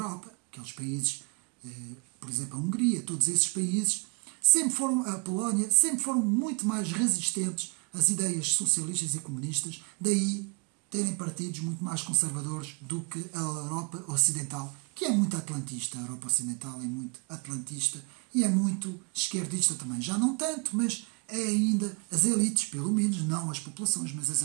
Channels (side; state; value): left; quieter; 33.9 dB